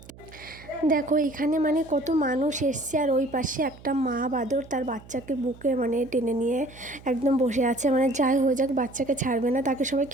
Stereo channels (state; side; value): noise; right; hum, 20 dB below the sound